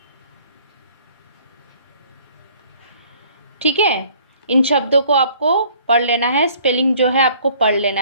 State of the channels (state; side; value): inverted; both; correlation -0.57